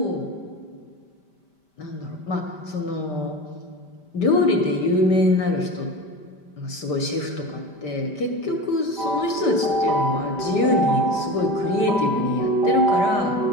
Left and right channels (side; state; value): right; late; 5.1 ms